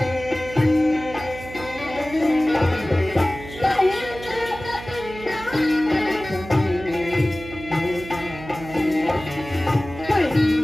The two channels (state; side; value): noise; right; hum, 14 dB below the sound